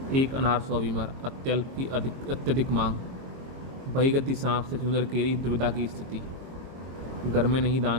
एक अनार 100 बीमार, अत्यल्प की अत्यधिक मांग। बहीगति सांप से चुंदर केरी, दुविधा की स्थिति। घर में नहीं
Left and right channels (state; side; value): late; left; 22 ms